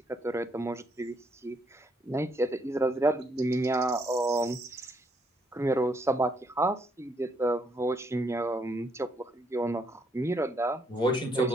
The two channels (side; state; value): both; normal; correlation 0.73